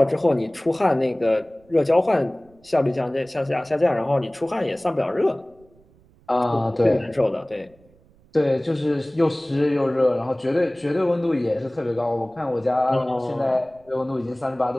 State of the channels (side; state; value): right; noise; rumble, 30 dB below the sound